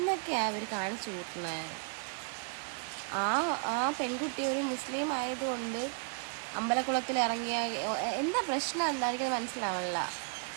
അവർ കാണിച്ചു കൂട്ടുന്നത്. ആ പെൺകുട്ടി ഒരു മുസ്ലിം ആയതുകൊണ്ട് അമ്പലക്കുളത്തിൽ ഇറങ്ങിയ എന്താ പ്രശ്നം എന്തായിരിക്കും മനസ്സിലാവില്ല.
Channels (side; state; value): left; quieter; 38.8 dB